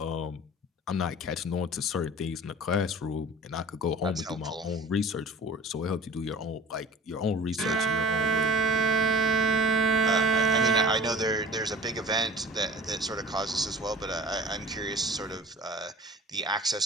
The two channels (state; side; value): normal; both; correlation 0.43